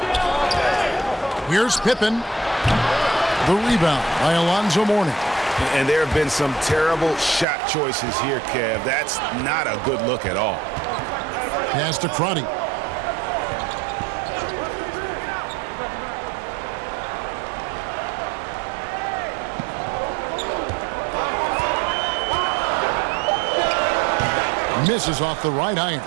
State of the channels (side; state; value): left; drops out; at 7.5 s